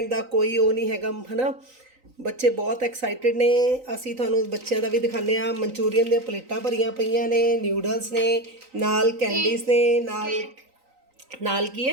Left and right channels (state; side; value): late; left; 3.9 ms